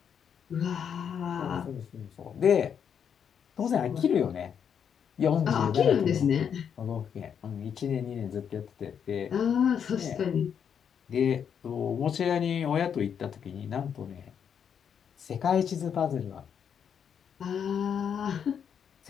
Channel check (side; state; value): right; quieter; 7.8 dB